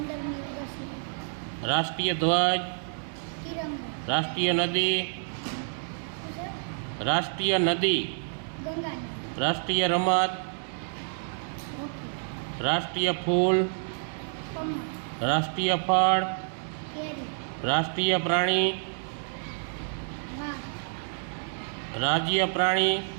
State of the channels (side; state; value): left; silent; digital silence